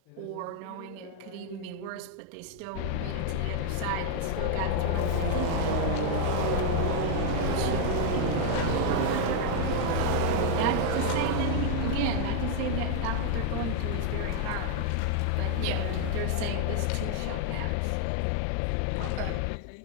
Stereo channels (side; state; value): both; different; correlation 0.00